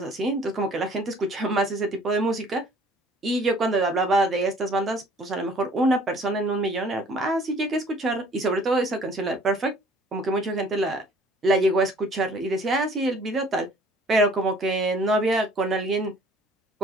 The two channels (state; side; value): normal; both; correlation 0.54